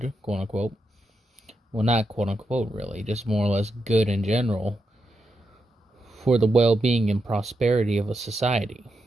quote unquote. Well, not quote unquote, really, just more or less good in general, for the well-being and prosperity of a society.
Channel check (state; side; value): normal; both; correlation 0.85